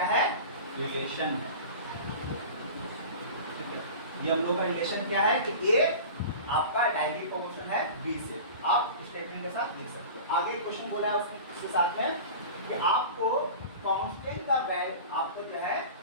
है? रिलेशन है, ठीक है। ये हम लोग का रिलेशन क्या है कि ए आपका डायरेक्टली प्रोपोर्शनल है बी से, आप स्टेटमेंट के साथ लिख सकते हो। आगे क्वेश्चन बोला है उसके साथ में कि आपको कांस्टेंट का आपको जो है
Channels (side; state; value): both; inverted; correlation -0.36